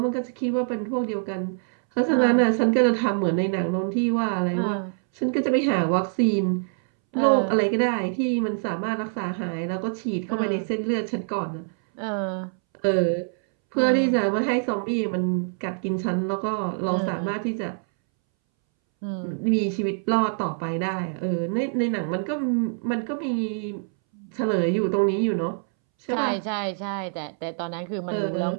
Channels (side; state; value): left; silent; 62 dB below the other